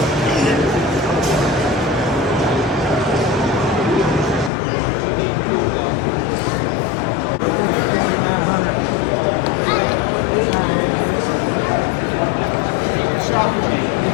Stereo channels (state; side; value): drops out; right; at 4.5 s